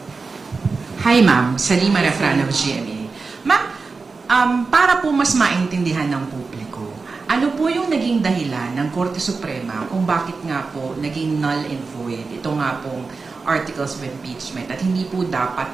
Hi ma'am, Salima Refran of GMA. Ma'am, para po mas maintindihan ng publiko, ano po yung naging dahilan ng Korte Suprema kung bakit nga po naging null and void ito nga pong articles of impeachment at hindi po dapat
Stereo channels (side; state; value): left; quieter; 4.4 dB